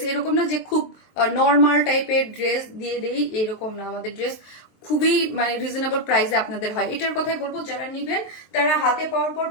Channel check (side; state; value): right; late; 23 ms